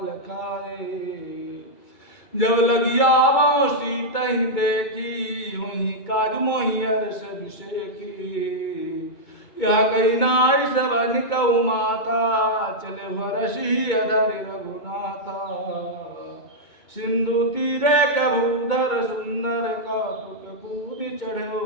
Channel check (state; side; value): late; right; 2.2 ms